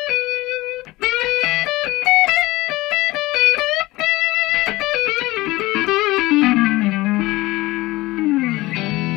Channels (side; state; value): right; quieter; 19.6 dB